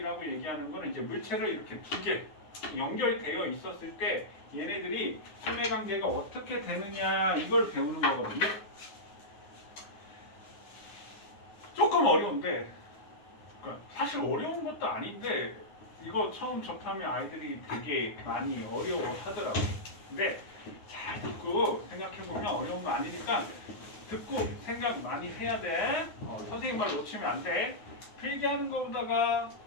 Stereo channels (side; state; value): right; late; 9.6 ms